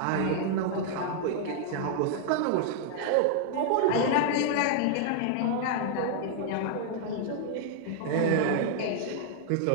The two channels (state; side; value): different; both; correlation -0.01